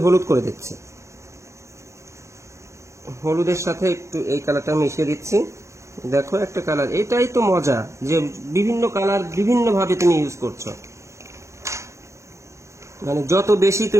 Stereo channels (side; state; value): left; late; 0.14 ms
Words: হলুদ করে দিচ্ছি, হলুদের সাথে একটু এই কালারটা মিশিয়ে দিচ্ছি। দেখো একটা কালার, এটাই তো মজা যে বিভিন্ন কালার বিভিন্ন ভাবে তুমি ইউজ করছো, মানে যত বেশি